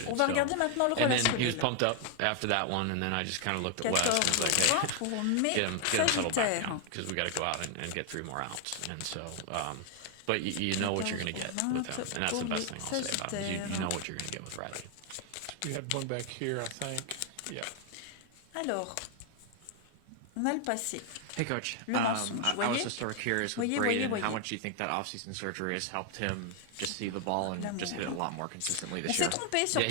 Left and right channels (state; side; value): different; both; correlation 0.00